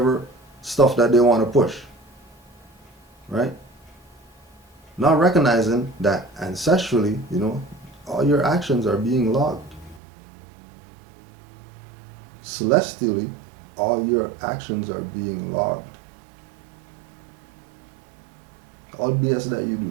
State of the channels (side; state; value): left; drops out; at 10.0 s